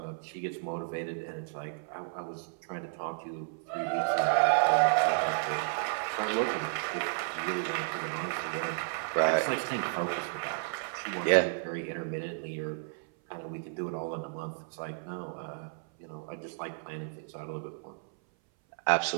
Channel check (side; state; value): left; silent; 56 dB below the other